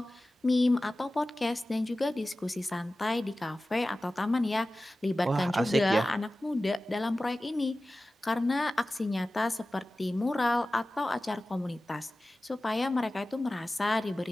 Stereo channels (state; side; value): normal; both; correlation 0.96